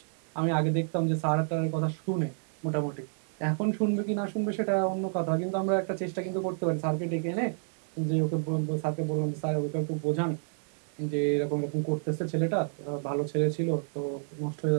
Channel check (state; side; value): silent; left; digital silence